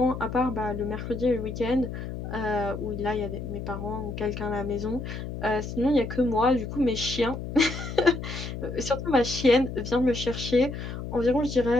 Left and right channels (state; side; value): noise; left; hum, 7 dB below the sound